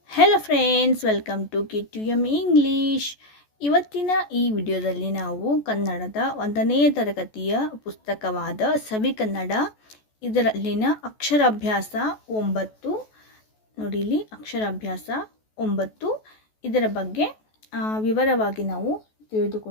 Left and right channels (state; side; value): late; right; 14 ms